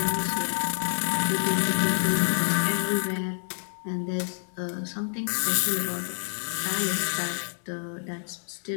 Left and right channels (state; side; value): silent; right; digital silence